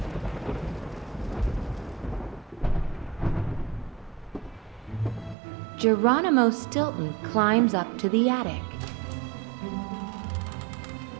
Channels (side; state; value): left; drops out; at 5.4 s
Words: Geronimo Stilton climbs up to the attic.